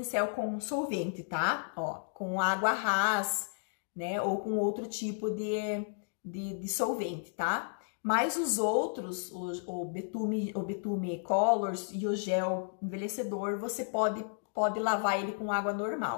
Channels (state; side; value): silent; right; digital silence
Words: com solvente, tá? Ó, com água ras, né? Ou com outro tipo de solvente, tá? Mas os outros, o betume colors e o gel envelhecedor, você pode lavar ele com água